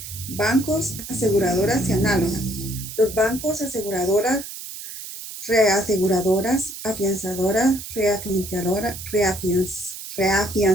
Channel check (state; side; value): noise; right; hiss, 11 dB below the sound